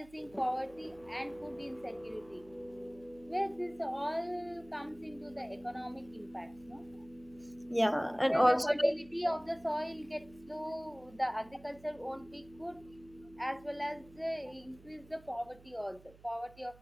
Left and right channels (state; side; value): noise; right; hum, 23 dB below the sound